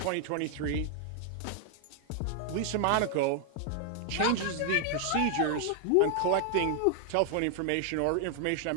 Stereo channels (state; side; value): different; both; correlation 0.00